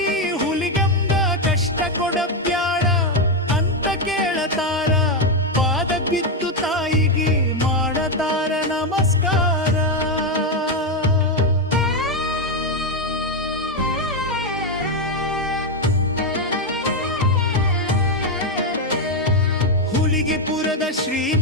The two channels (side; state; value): both; normal; correlation 0.06